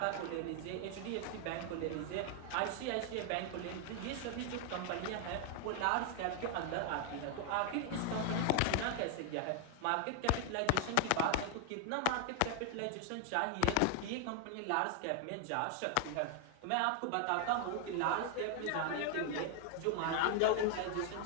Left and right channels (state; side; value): different; both; correlation 0.00